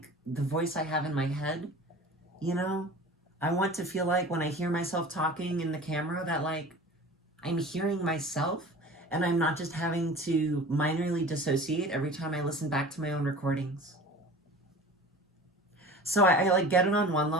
the voice I have in my head, you know? I want to feel like when I hear myself talking in the camera that like I'm hearing myself and I'm not just having to minorly dissociate every time I listen back to my own recordings. So I like get it on one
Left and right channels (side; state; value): both; normal; correlation 0.39